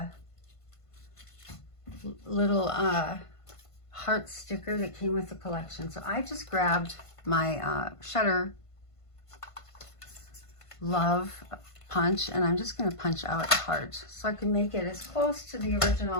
little heart sticker that came with the collection. So I just grabbed my Shutter Love punch, and I'm just going to punch out a heart so I can make it as close to the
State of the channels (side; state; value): right; late; 1.5 ms